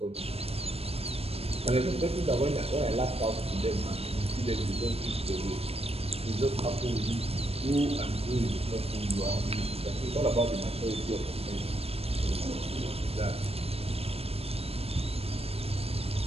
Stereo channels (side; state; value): left; late; 0.29 ms